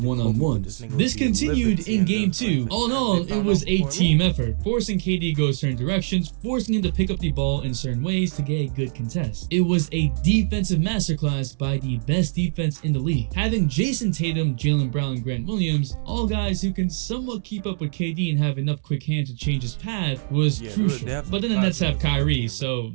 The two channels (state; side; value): silent; left; digital silence